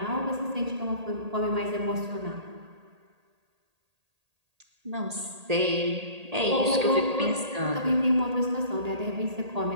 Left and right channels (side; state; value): left; late; 1.8 ms